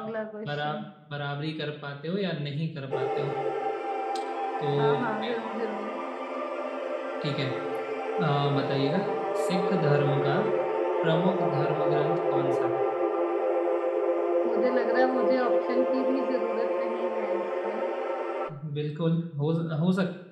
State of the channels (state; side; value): identical; both; correlation 1.00